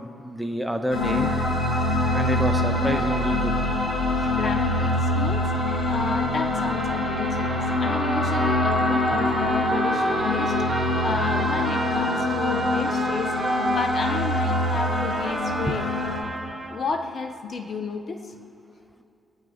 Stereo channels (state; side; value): normal; both; correlation 0.52